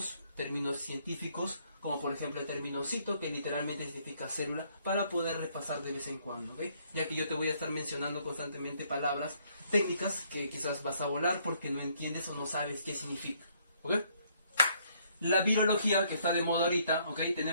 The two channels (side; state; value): both; inverted; correlation -0.67